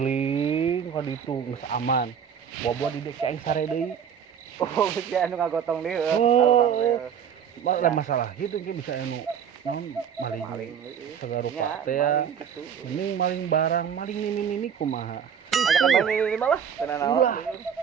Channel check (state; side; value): quieter; left; 7.9 dB